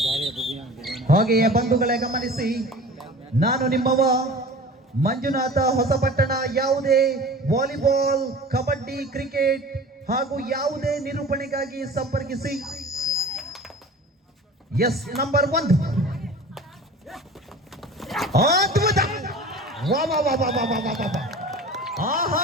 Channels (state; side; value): normal; both; correlation 0.39